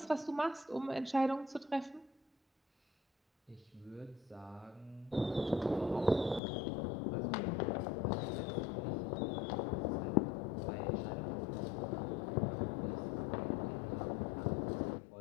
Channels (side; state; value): right; drops out; at 6.4 s